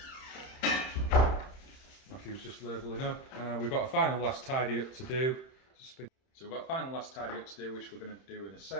Matthew's just labelling up. We've got a final last tidy up to do. So we've got a final last tidy up to do, which we're going to do in a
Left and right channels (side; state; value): right; late; 31 ms